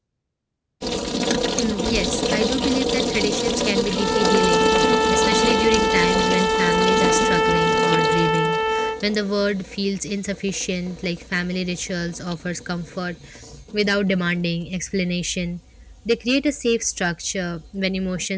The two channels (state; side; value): identical; both; correlation 1.00